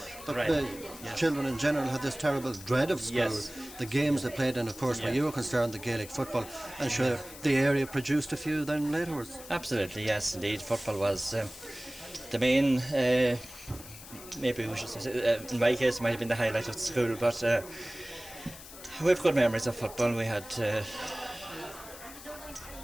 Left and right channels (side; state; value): left; noise; hiss, 16 dB below the sound